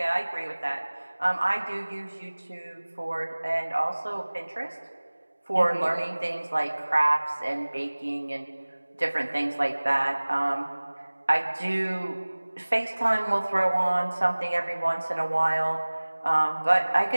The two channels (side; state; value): both; inverted; correlation -1.00